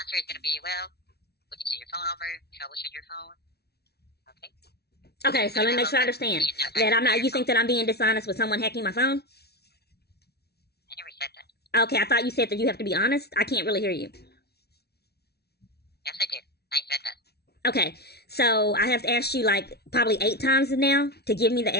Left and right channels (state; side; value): late; right; 0.47 ms